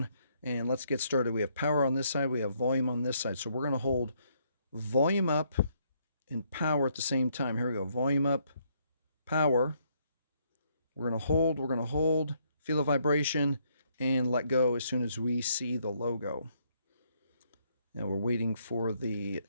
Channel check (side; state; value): both; inverted; correlation -0.71